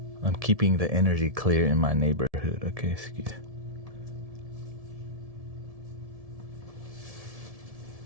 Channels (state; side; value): late; left; 1.7 ms